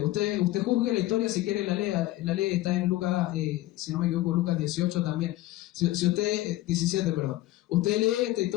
usted juzgue la historia si quiere, la lee, está en Lucas, si no me equivoco, Lucas 18 también. Si usted, 17, perdón. Usted lee esta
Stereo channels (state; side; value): quieter; right; 16.5 dB